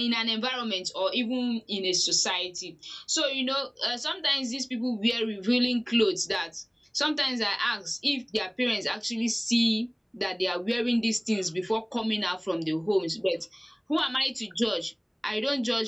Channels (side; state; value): both; identical; correlation 1.00